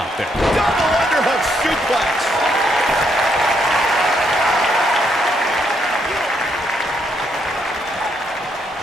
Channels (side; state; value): both; normal; correlation 0.74